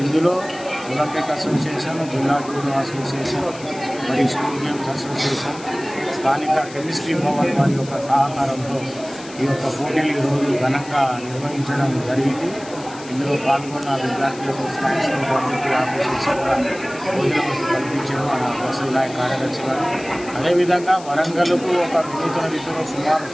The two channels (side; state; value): left; noise; hiss, 18 dB below the sound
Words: ఇందులో ఒలింపిక్ అసోసియేషన్, జిల్లా జూడో అసోసియేషన్, మరియు స్కూల్ గేమ్స్ అసోసియేషన్, స్థానిక కెమిస్ట్రీ భవన్ వారి యొక్క సహకారంతో ఈ యొక్క పోటీలు ఈరోజు ఘనంగా నిర్వహించడం జరిగింది. ఇందులో పాల్గొన్న విద్యార్థులకు స్కాలర్షిప్ పబ్లిక్ ఆఫీసర్స్ కూడా భోజన వసతి కల్పించడం వసతి నాయక్ కార్యదర్శి గారు. అదేవిధంగా వరంగల్కు ఒక వినూతన రీతిలో సుమారు